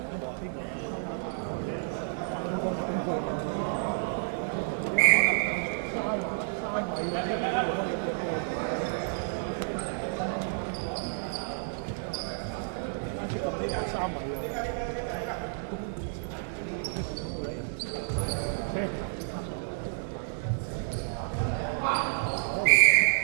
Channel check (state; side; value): silent; left; 58 dB below the other